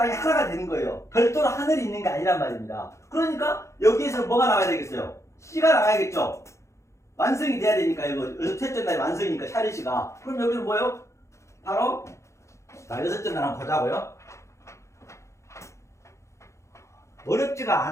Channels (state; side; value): late; right; 0.14 ms